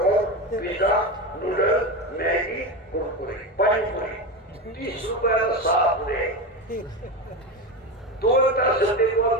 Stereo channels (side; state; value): both; normal; correlation 0.20